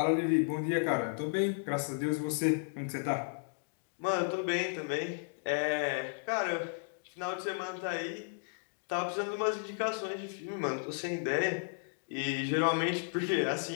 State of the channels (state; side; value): silent; right; digital silence